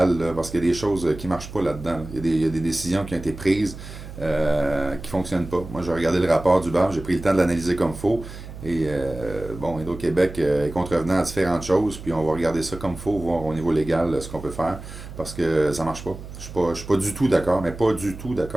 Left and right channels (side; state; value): right; noise; hum, 13 dB below the sound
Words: là, parce qu'il y a des choses qui marchent pas là-dedans. Là. Il y a des décisions qui ont été prises qui fonctionnent pas. Moi, j'ai regardé le rapport du BAM, j'ai pris le temps de l'analyser comme il faut. Et bon, Hydro-Québec est contrevenant à différentes choses, puis on va regarder ça comme il faut, voir au niveau légal ce qu'on peut faire, parce que ça marche pas. Je suis pas du tout d'accord, mais pas du tout